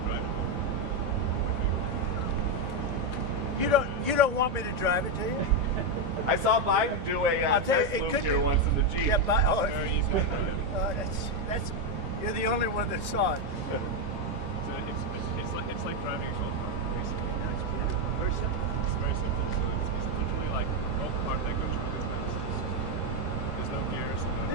drive it? You don't want me to drive it, do you? I saw Biden do a I'll tell you, test it loop could here be- once in the Jeep. Yeah, but Very easy. that's you're the only one that saw it. So it's like driving a golf cart, basically. person? It's very simple. So it's literally like both car that goes really fast. There's no gears. No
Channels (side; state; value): left; late; 14 ms